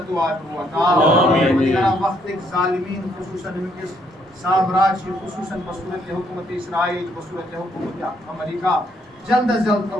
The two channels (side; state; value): both; normal; correlation 0.70